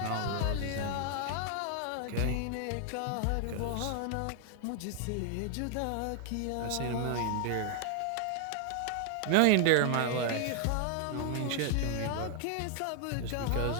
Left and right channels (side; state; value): both; different; correlation 0.00